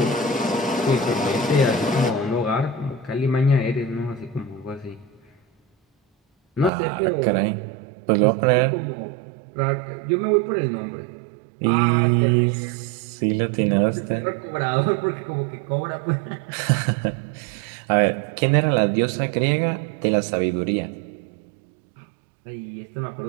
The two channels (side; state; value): left; drops out; at 6.7 s